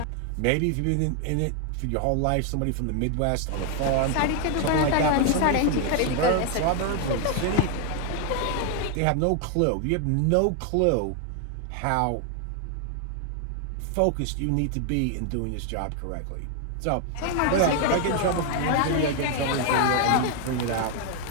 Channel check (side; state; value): both; different; correlation 0.00